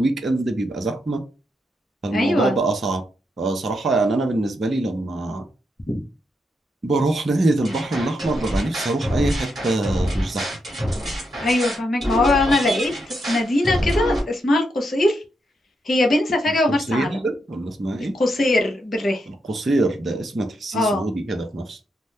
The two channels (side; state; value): both; normal; correlation 0.82